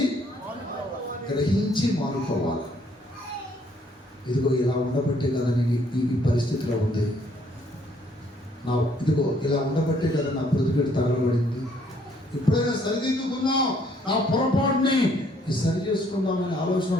గ్రహించి మానుకోవాలి. ఇదిగో ఇలా ఉండబట్టే కదా నేను ఈ పరిస్థితిలో ఉంది. ఇదిగో ఇలా ఉండబట్టే కదా నా ప్రతిపెట్టి తగలబడింది. ఎప్పుడైనా సరిదిద్దుకుందాం, నా పొరపాటుని సరి చేసుకుందామనే ఆలోచన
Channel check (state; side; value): normal; both; correlation 0.65